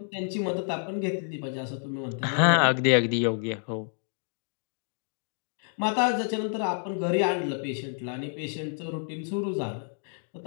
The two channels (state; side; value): silent; right; digital silence